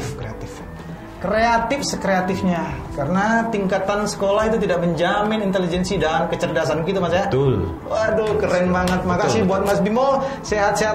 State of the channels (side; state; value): both; identical; correlation 1.00